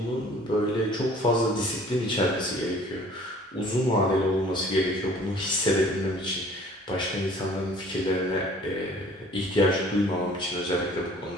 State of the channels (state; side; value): normal; both; correlation 0.52